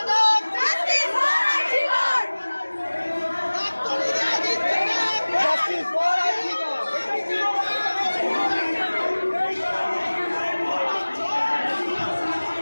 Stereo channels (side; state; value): both; inverted; correlation -1.00